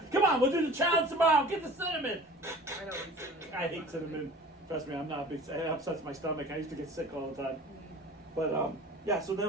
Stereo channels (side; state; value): both; normal; correlation 0.42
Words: Come on, we'll do the challenge tomorrow. Get the cinnamon. I know. What cinnamon. I hate cinnamon. Trust me, I'm not a big. It upsets my stomach. I used to get sick all the time. But yeah. So